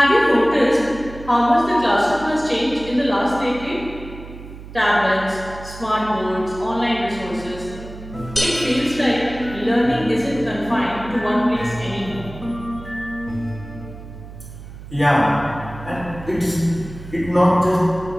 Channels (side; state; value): right; noise; hum, 14 dB below the sound